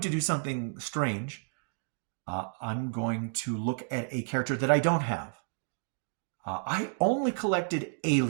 to do something strange. I'm going to look at a character that I don't have. I only collected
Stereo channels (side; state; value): left; silent; 56 dB below the other